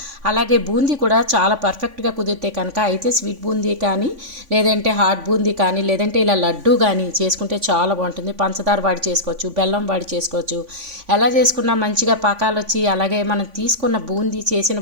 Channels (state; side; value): late; left; 3.5 ms